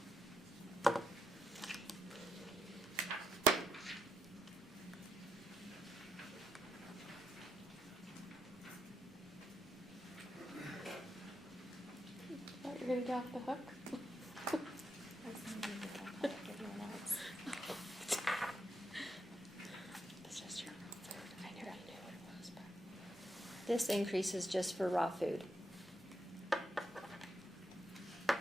Thought you were gonna get off the hook? This increase is just for raw food.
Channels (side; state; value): both; normal; correlation 0.81